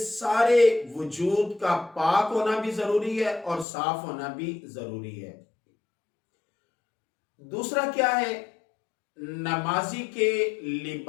وجود کا پاک ہونا بھی ضروری ہے اور صاف ہونا بھی ضروری ہے۔ دوسرا کیا ہے؟ نمازی کے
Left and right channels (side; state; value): right; drops out; at 3.7 s